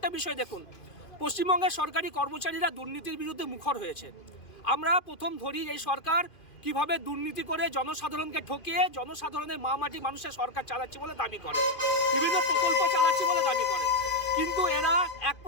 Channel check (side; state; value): right; late; 2.5 ms